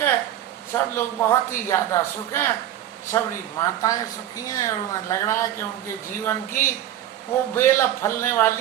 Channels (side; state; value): left; quieter; 11.9 dB